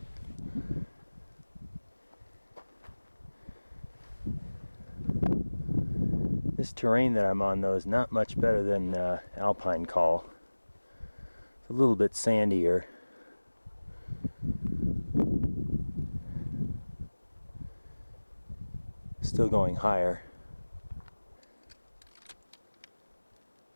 This terrain that I'm on, though, is not much better than Alpine Col. It's a little bit sandier. Still going higher.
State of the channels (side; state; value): both; inverted; correlation -1.00